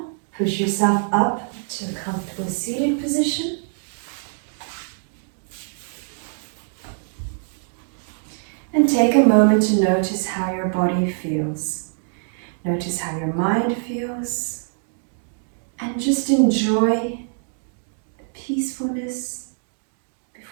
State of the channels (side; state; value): left; silent; digital silence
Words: push yourself up to a comfortable seated position. And take a moment to notice how your body feels. Notice how your mind feels. And just enjoy the peacefulness